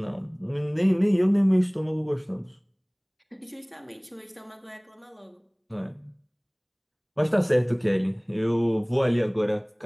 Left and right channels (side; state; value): both; identical; correlation 1.00